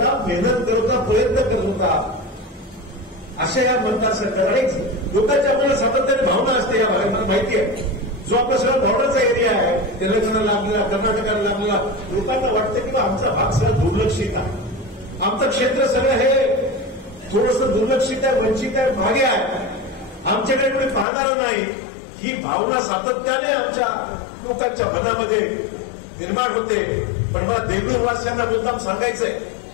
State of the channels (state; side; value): drops out; right; at 21.1 s